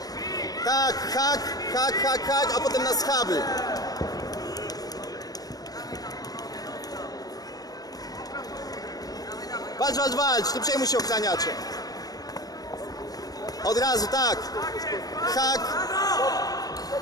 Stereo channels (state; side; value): late; right; 0.18 ms